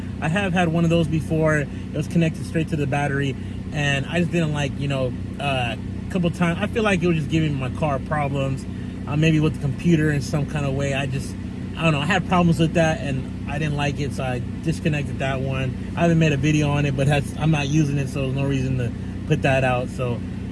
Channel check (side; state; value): both; identical; correlation 1.00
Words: I have had one of those before. It was connected straight to the battery, and I just didn't like, a couple times. I feel like it was just giving my car problems, maybe with the computer in some kind of way. I don't know. I had problems with that, and I didn't like it, so I disconnected that one. I haven't made a video on it, but I'm not using it, so there's no reason to put that out. So,